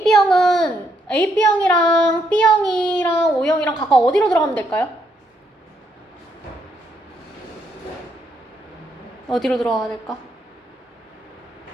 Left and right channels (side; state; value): both; normal; correlation 0.75